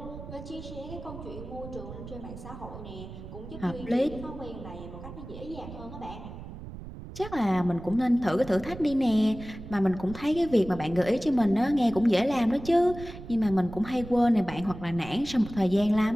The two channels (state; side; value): noise; right; rumble, 12 dB below the sound